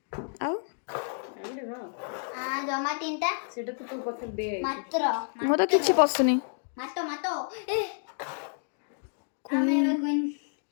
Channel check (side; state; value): right; silent; digital silence